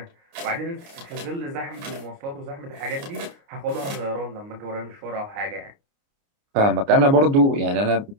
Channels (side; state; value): left; late; 29 ms